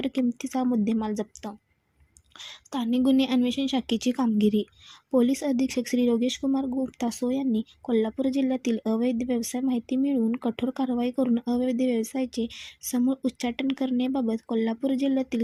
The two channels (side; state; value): both; identical; correlation 1.00